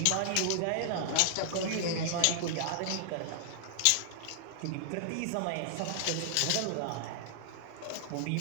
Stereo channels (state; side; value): different; both; correlation -0.01